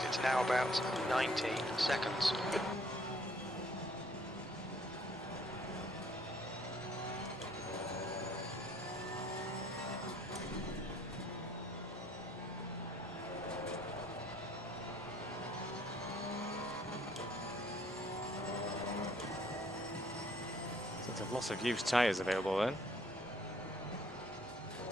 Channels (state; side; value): normal; both; correlation 0.61